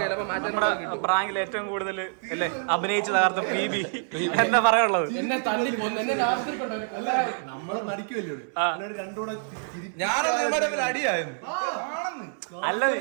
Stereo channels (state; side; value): silent; left; 60 dB below the other